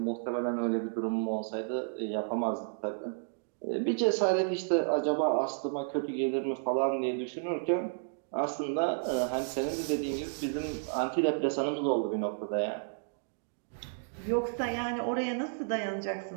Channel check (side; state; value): left; silent; digital silence